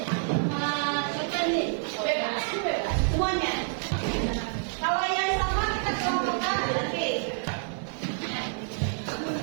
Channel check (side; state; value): left; silent; 59 dB below the other